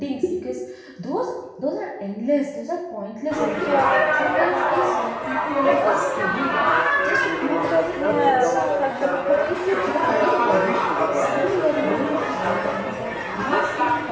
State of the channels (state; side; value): identical; both; correlation 1.00